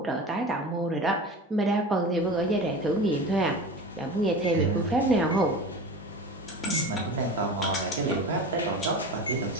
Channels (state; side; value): normal; both; correlation 0.32